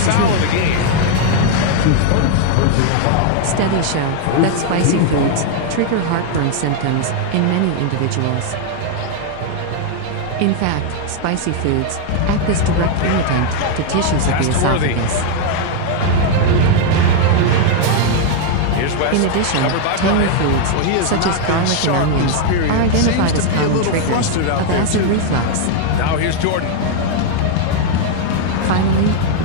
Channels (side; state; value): both; different; correlation 0.00